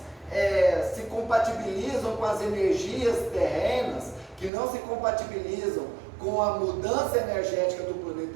se compatibilizam com as energias terrenas, que não se compatibilizam com a mudança energética do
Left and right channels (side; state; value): left; drops out; at 4.5 s